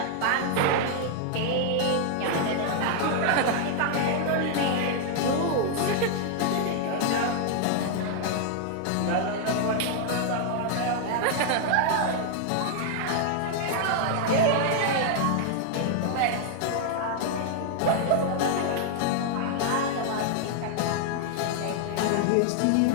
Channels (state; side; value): different; both; correlation 0.00